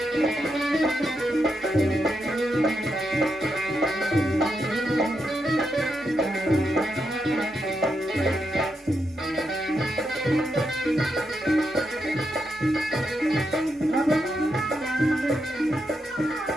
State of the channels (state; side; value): normal; both; correlation 0.83